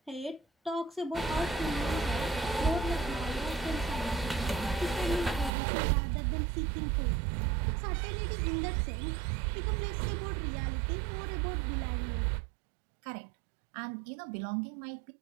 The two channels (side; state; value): left; drops out; at 5.5 s